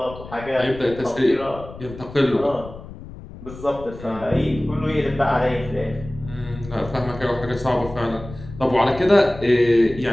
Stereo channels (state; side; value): noise; left; rumble, 15 dB below the sound